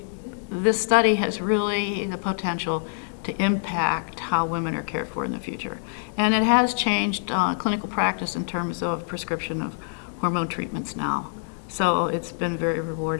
this study has really the potential to impact how women are cared for in the future, and it has changed clinical practice in terms of prescription of hormone treatments now. So it's been very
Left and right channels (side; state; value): right; silent; digital silence